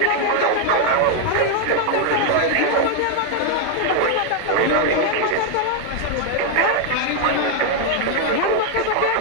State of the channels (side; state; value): both; different; correlation 0.00